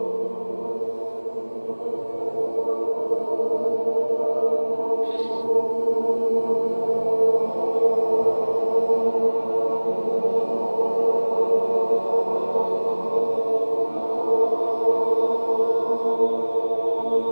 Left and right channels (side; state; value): both; inverted; correlation -1.00